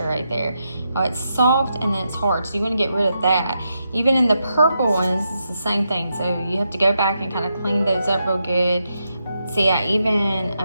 right there. Oh, it's soft and then it's hard, so you want to get rid of that. Even in the purple ones, it's the same thing. So you have to go back and kind of clean those up real good. See,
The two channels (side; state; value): both; inverted; correlation -0.84